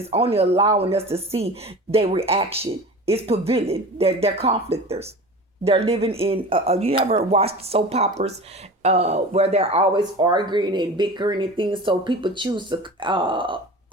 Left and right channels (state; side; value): normal; both; correlation 0.35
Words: only allowing us to see their reaction. It's prevailing. They're conflictors. They're living in. You ever watched soap operas where they're always arguing and bickering and things? So people choose